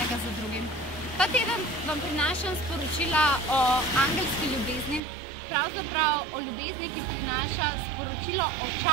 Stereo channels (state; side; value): drops out; left; at 5.0 s